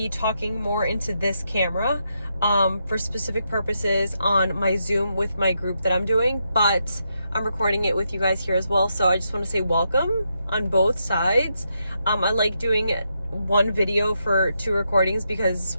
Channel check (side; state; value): both; inverted; correlation -0.82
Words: talking more into this camera for specific purposes on my Zoom with my group that I'm doing, but I'm recording it with you guys here as well. So I just want to say welcome on both sides. I like doing one video for two recordings because